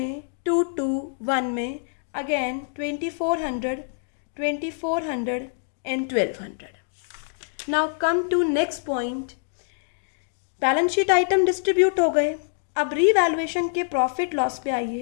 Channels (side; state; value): right; silent; digital silence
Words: 2:1 में, again 2400 and 1200। Now come to next point, balance sheet item distribute हो गए। अब रीवैल्यूएशन के प्रॉफिट लॉस पे